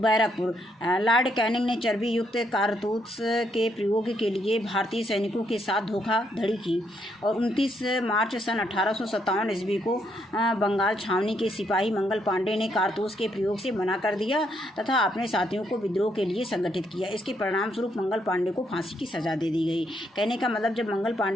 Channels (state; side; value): normal; both; correlation 0.75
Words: लॉर्ड कैनिंग ने चर्बी युक्त कारतूस के प्रयोग के लिए भारतीय सैनिकों के साथ धोखाधड़ी की, और 29 मार्च सन 1857 ईस्वी को बंगाल छावनी के सिपाही मंगल पांडे ने कारतूस के प्रयोग से मना कर दिया तथा अपने साथियों को विद्रोह के लिए संगठित किया। इसके परिणाम स्वरूप मंगल पांडे को फांसी की सजा दे दी गई। कहने का मतलब, जब मंगल